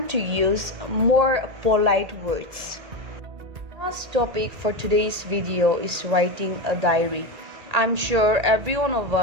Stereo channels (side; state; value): left; late; 1.8 ms